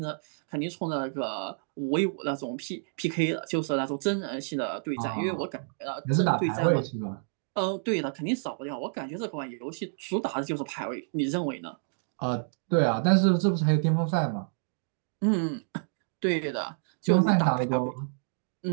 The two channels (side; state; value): left; silent; digital silence